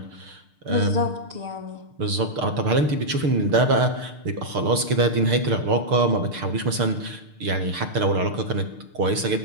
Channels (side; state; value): left; late; 6.7 ms